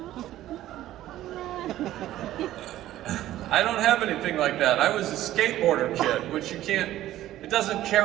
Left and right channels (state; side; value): quieter; left; 13.9 dB